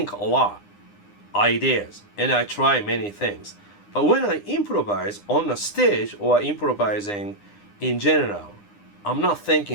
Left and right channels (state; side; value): late; right; 9.8 ms